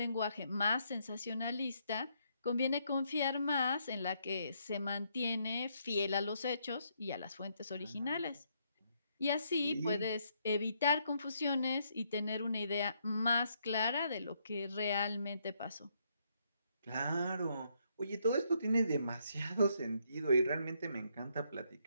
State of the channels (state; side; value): inverted; both; correlation -0.74